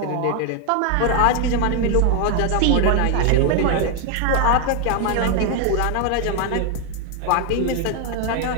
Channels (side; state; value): both; different; correlation 0.00